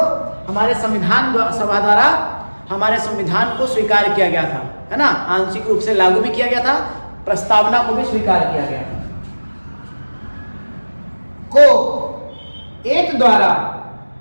हमारे संविधान सभा द्वारा हमारे संविधान को स्वीकार किया गया था, है ना। आंशिक रूप से लागू भी किया गया था, प्रस्तावना को भी स्वीकार किया गया था। को एक द्वारा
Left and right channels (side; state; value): both; inverted; correlation -1.00